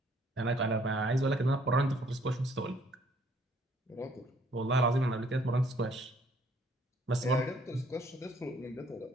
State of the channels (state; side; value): normal; both; correlation 0.62